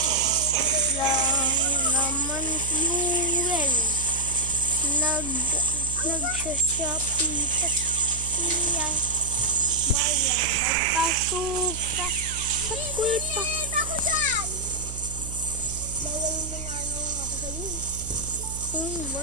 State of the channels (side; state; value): right; noise; hum, 9 dB below the sound